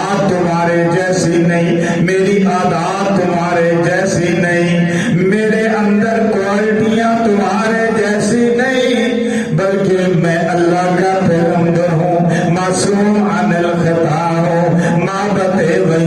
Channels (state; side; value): identical; both; correlation 1.00